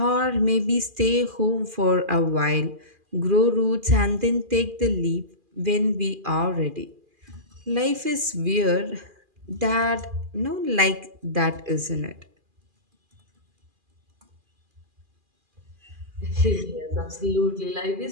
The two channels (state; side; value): late; left; 2.4 ms